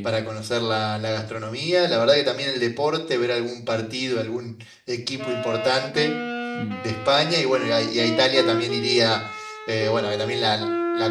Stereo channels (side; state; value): both; identical; correlation 1.00